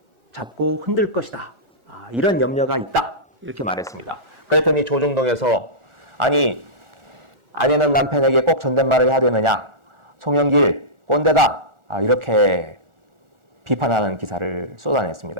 잡고 흔들 것이다, 이런 염려가 있다, 이렇게 말했습니다. 그랬더니 조정동에서 아니, 아내는 남편에게 꼭 존댓말을 해야 되느냐, 송영길 꼰대다, 이렇게 비판하는 기사를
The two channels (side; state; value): left; late; 1.4 ms